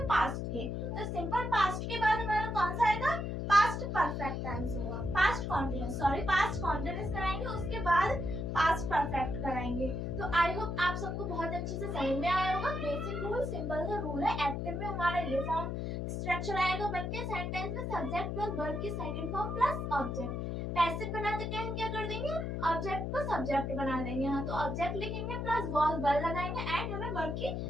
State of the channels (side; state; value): left; noise; hum, 3 dB below the sound